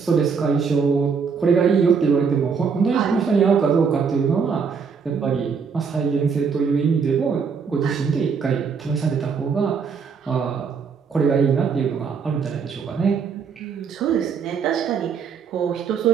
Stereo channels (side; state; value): left; quieter; 5.9 dB